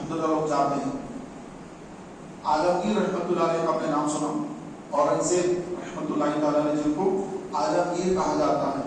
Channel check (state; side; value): identical; both; correlation 1.00